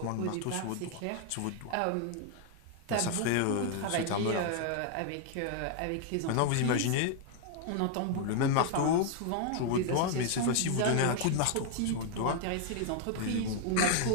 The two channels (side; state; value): both; different; correlation 0.00